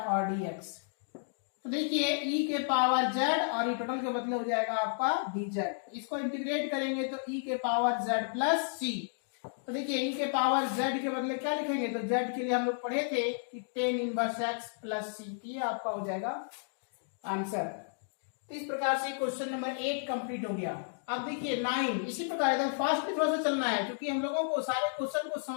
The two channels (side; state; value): right; silent; digital silence